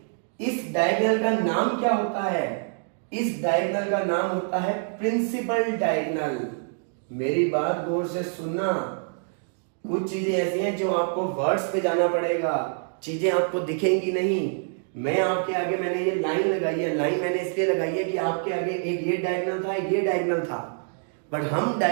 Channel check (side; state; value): left; silent; digital silence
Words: इस डायगोनल का नाम क्या होता है, इस डायगोनल का नाम होता है प्रिंसिपल डायगोनल। मेरी बात गौर से सुनना, कुछ चीजें ऐसी हैं जो आपको वर्ड्स पे जाना पड़ेगा, चीजें आपको दिखेंगी नहीं। मैं आपके आगे मैंने ये लाइन लगाई है, लाइन मैंने इसलिए लगाई है कि आपके आगे एक ये डायगोनल था, एक ये डायगोनल था, बट हम